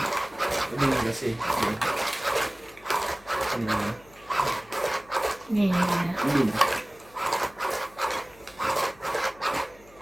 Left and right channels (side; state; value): left; noise; hum, 26 dB below the sound